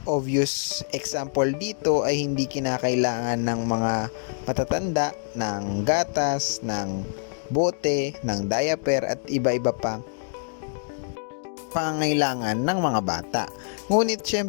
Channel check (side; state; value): right; silent; digital silence